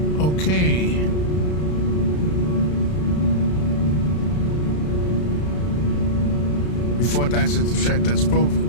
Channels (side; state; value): right; late; 33 ms